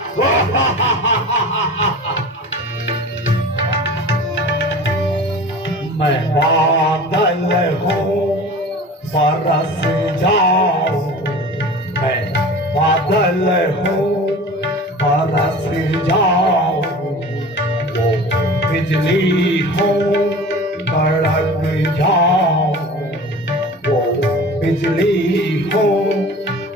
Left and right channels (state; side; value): normal; both; correlation 0.38